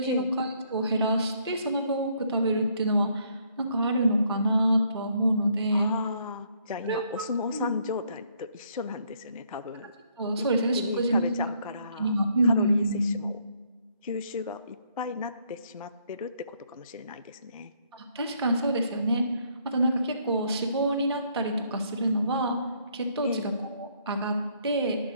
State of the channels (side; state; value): both; inverted; correlation -0.68